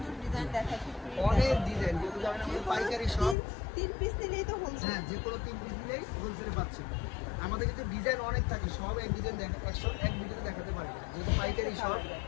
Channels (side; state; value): right; drops out; at 3.4 s